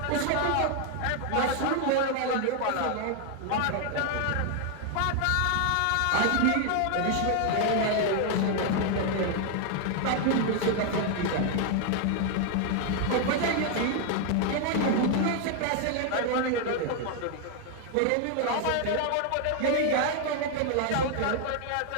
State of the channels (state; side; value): different; both; correlation 0.00